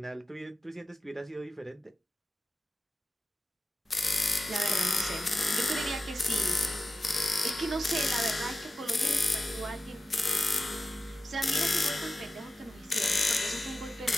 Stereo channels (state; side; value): normal; both; correlation 0.93